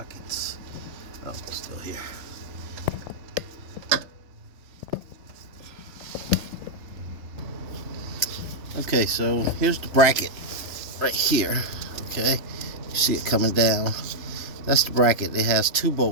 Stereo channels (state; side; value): late; left; 3.4 ms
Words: Oh, it's still here. Okay, so here's the bracket right here. Okay, you see it coming down. That's the bracket. It has two